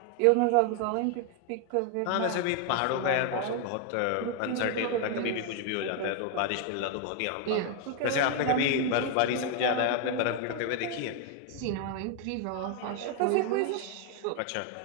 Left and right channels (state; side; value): different; both; correlation 0.01